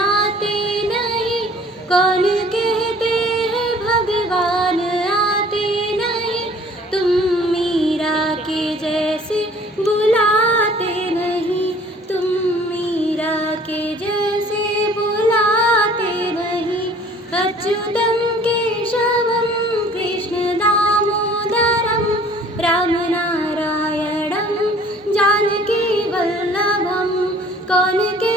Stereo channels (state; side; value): normal; both; correlation 0.53